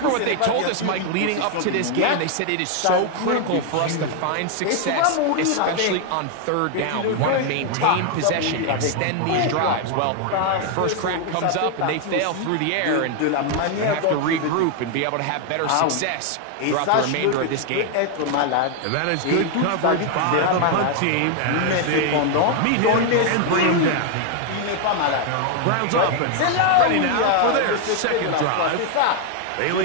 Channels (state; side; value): different; both; correlation 0.00